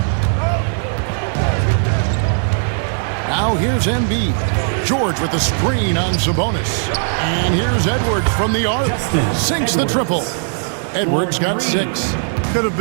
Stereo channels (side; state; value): left; silent; digital silence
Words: Now here's Embiid. George with the screen on Sabonis. And here's Edwards from the arc. Sinks the triple. Edwards got 6. Could have